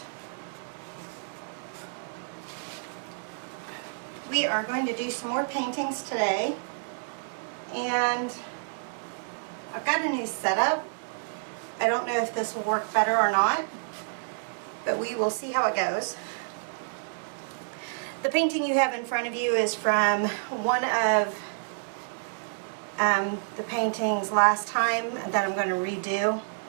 we are going to do some more paintings today. And I've got a new setup. I don't know if this will work better or not, but we will see how it goes. The painting you have in front of you is from one of the paintings last time that I'm going to redo.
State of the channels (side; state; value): left; silent; digital silence